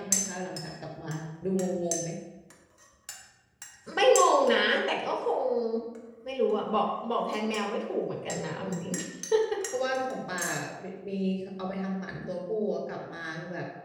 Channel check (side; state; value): both; identical; correlation 1.00